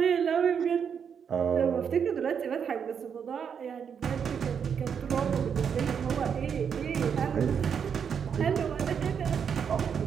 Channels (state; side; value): quieter; left; 7.3 dB